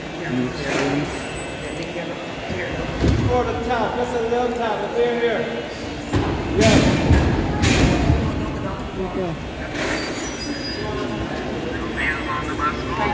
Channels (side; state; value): both; identical; correlation 1.00